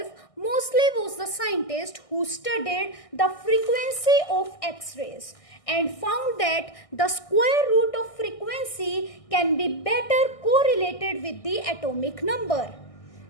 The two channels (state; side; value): late; right; 1.6 ms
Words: Moseley was the scientist who studied the frequency of X-rays and found that the square root of frequency can be better correlated with the atomic number